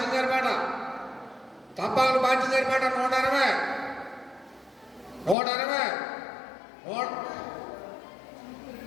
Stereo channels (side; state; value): right; drops out; at 5.4 s